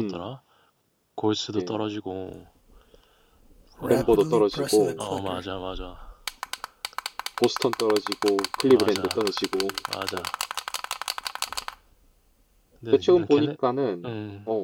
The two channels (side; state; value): both; identical; correlation 1.00